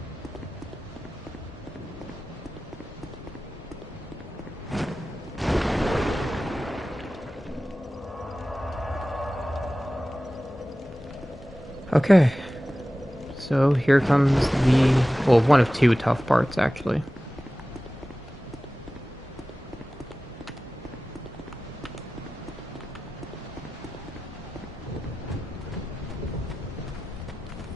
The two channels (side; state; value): both; normal; correlation 0.96